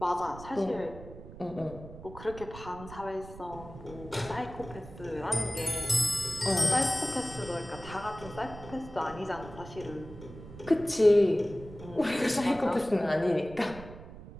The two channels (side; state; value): right; noise; rumble, 15 dB below the sound